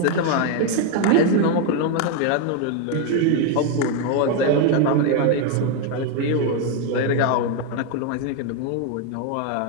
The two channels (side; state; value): both; different; correlation 0.01